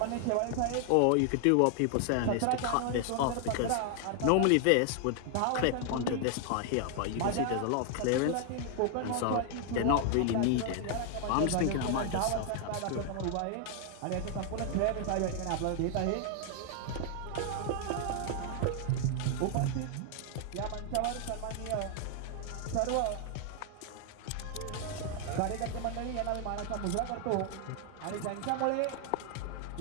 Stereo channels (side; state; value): both; different; correlation 0.00